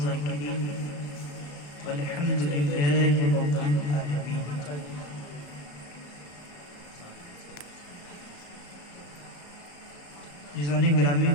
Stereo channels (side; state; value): right; late; 35 ms